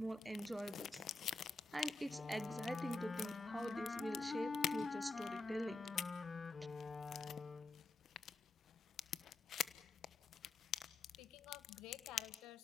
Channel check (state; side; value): quieter; right; 3.4 dB